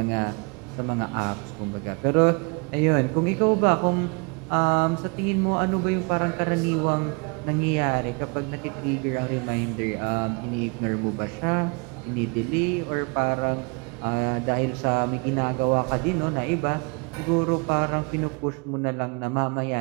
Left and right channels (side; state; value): left; quieter; 32.1 dB